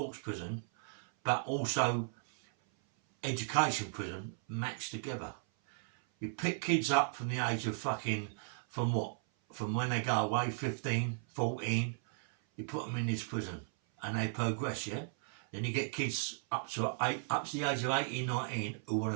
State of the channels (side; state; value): left; silent; 54 dB below the other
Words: prison, but also education prison matched together. You pick kids up from the age of fucking, from when they go away, 15, 14, you put them in this prison and they progress, yeah? Then you get kids up to the age of 18, 19 who want